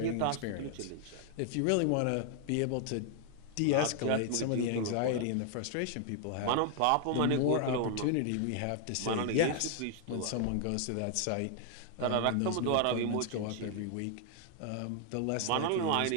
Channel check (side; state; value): both; different; correlation 0.00